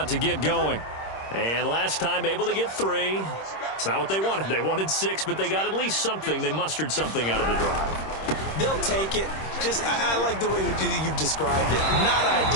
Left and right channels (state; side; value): late; right; 26 ms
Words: to get going. And last time able to get 3. It's not what they wanted. They wanted 6, but they got at least something. They mustered something out of the drive. They'll take it. I like the way you've described it. Not